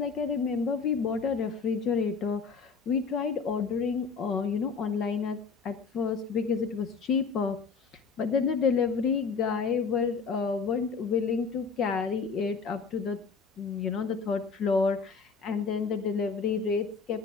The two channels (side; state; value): right; quieter; 5.2 dB